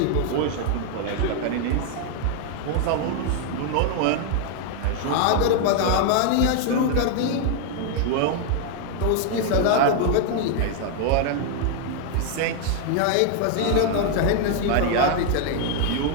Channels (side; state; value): both; different; correlation 0.00